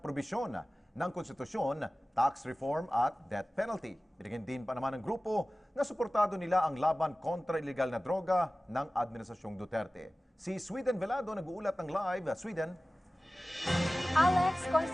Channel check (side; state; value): both; normal; correlation 0.97